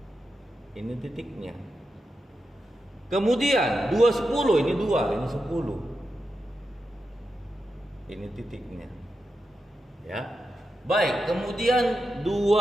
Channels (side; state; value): both; normal; correlation 0.88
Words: Ini titiknya. Kemudian 210 ini 2, ini 10. Ini titiknya. Ya. Baik, kemudian